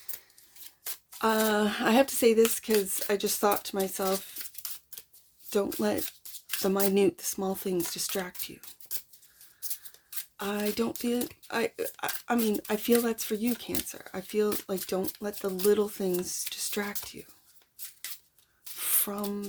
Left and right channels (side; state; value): both; identical; correlation 1.00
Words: I have to say this because I just thought to myself, don't let the small things distract you. I don't feel, I mean, I feel that's for you, Cancer. I feel like don't let the little things distract you